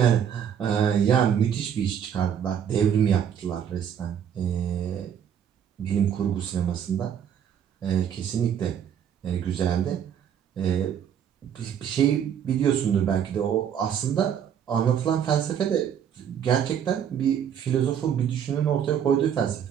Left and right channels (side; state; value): left; quieter; 8.7 dB